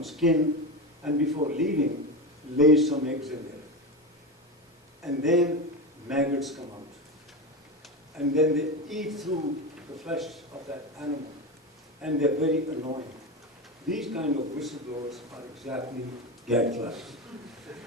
skin, and before leaving, lays some eggs in there. And then maggots come out. And then they eat through the flesh of that animal. And they're very annoying. These kind of whistleblowers are exactly gadflies.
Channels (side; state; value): both; normal; correlation 0.19